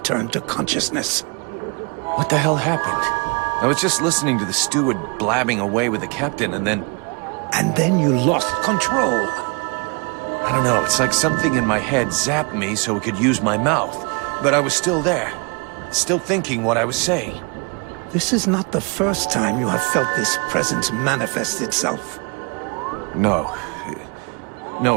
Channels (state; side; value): quieter; left; 32.2 dB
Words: to consciousness. What the hell happened? I was just listening to the steward blabbing away with the captain, and then... And then you lost control. I don't know, it's like something in my head zapped me so it could use my mouth. But I was still there, still thinking what I was saying. This is not the first time you have felt this presence manifest itself. No.